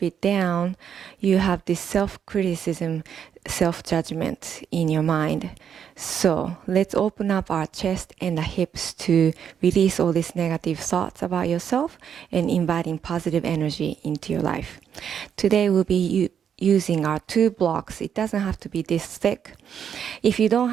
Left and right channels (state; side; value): quieter; left; 8.2 dB